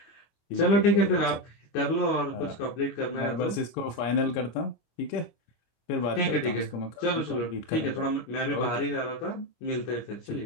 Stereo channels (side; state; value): right; late; 25 ms